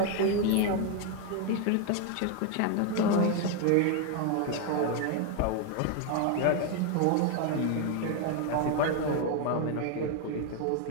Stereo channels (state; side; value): different; both; correlation 0.01